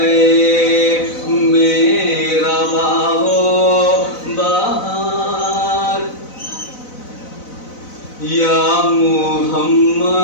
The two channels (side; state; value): right; late; 4.0 ms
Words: میرا باغ و بہار، یا